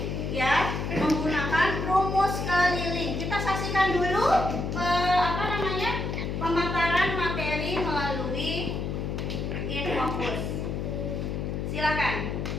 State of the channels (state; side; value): noise; left; hum, 3 dB below the sound